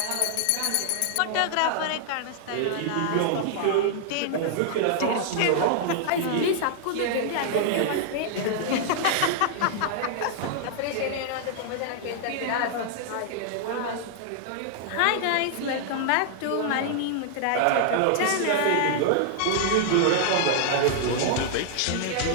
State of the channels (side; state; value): both; different; correlation -0.01